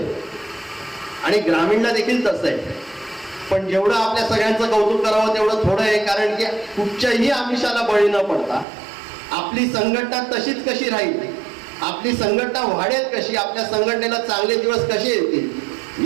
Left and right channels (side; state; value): left; drops out; at 8.7 s